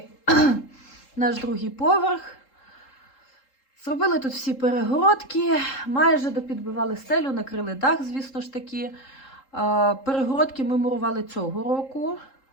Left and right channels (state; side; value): late; right; 3.7 ms